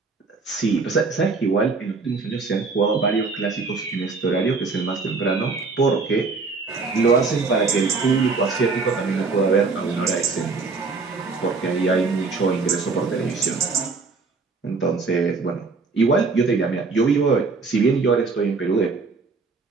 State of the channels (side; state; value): left; quieter; 4.3 dB